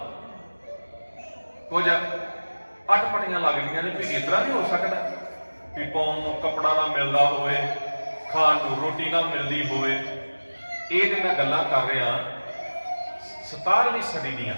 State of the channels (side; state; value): both; inverted; correlation -1.00